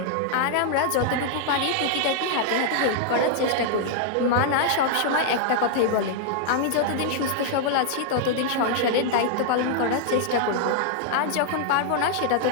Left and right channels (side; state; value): both; different; correlation -0.01